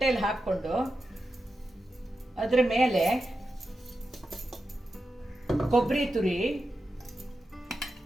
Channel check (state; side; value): normal; both; correlation 0.90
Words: ಹಾಕ್ಕೊಂಡು ಅದರ ಮೇಲೆ ಕೊಬ್ಬರಿ ತುರಿ,